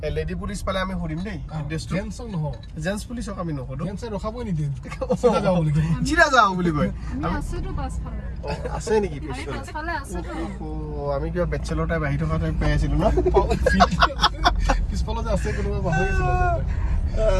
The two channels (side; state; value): both; identical; correlation 1.00